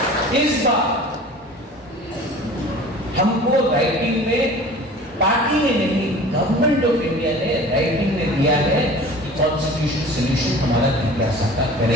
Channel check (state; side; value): normal; both; correlation 0.42